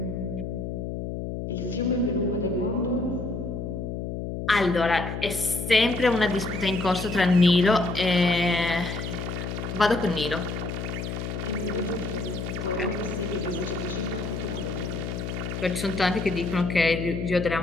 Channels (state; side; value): noise; left; hum, 5 dB below the sound